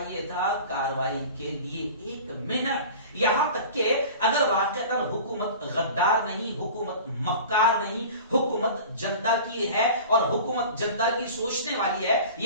تھا کاروائی کے لیے. 1 منٹ. یہاں تک کہ اگر واقعتا حکومت غدار نہیں، حکومت مکار نہیں، حکومت جنتا کی ہے اور حکومت جنتا کی سوچنے والی ہے،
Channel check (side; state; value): both; inverted; correlation -0.38